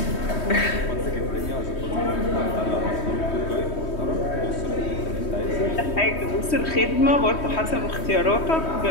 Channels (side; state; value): right; late; 3.1 ms